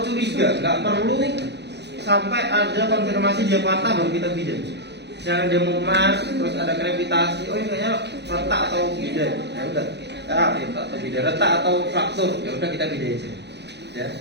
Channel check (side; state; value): left; late; 0.50 ms